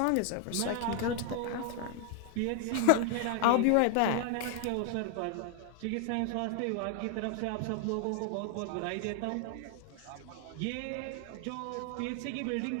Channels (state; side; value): different; both; correlation 0.00